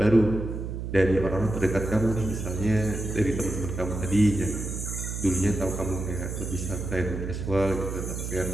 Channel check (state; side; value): noise; right; hum, 5 dB below the sound